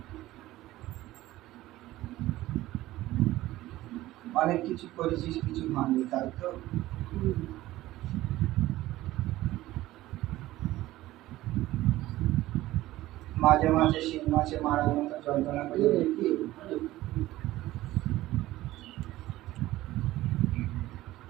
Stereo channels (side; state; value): left; quieter; 16.3 dB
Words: অনেক কিছু করেছিস, কিছু হয়নি, তাই তো? মাঝে মাঝে শিং মাছে মারার মতো যন্ত্রণা করে দেখি।